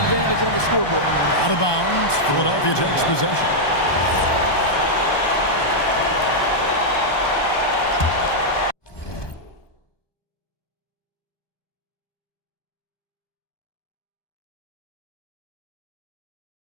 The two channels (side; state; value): right; late; 1.2 ms